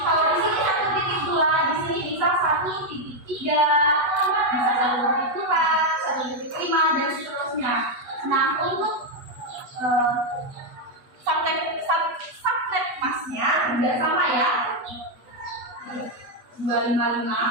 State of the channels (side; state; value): left; late; 8.2 ms